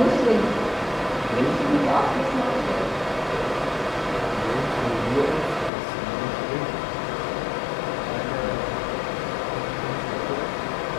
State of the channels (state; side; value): drops out; right; at 5.7 s